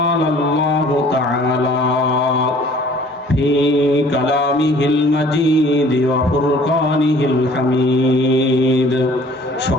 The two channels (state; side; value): normal; both; correlation 0.53